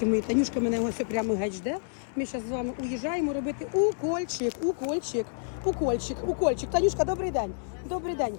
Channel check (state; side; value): silent; right; digital silence